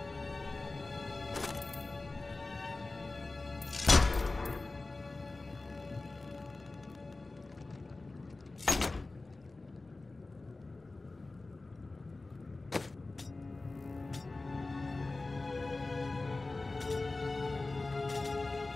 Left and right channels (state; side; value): quieter; right; 3.3 dB